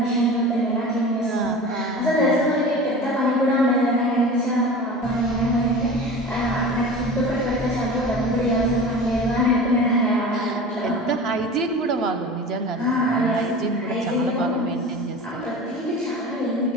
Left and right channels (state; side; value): normal; both; correlation 0.35